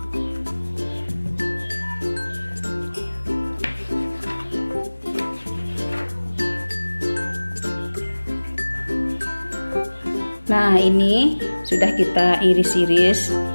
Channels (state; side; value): inverted; both; correlation -1.00